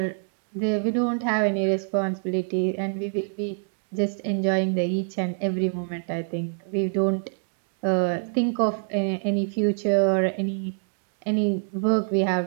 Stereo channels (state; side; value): silent; left; 61 dB below the other